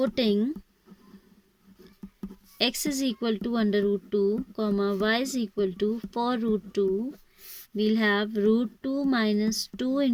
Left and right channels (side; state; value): both; identical; correlation 1.00